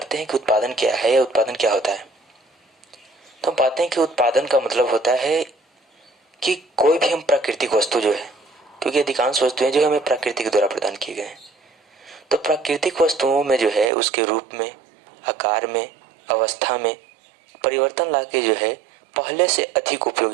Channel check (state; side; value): drops out; left; at 13.9 s